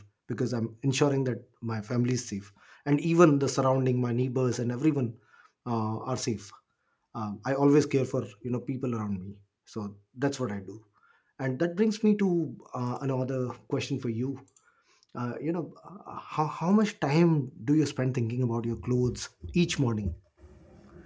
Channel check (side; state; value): both; identical; correlation 1.00